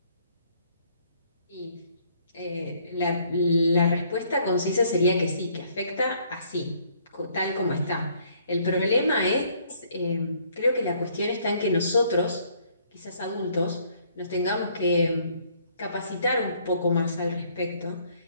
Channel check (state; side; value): inverted; both; correlation -0.64